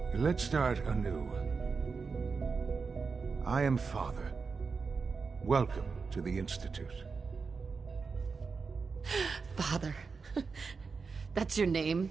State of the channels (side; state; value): left; quieter; 4.9 dB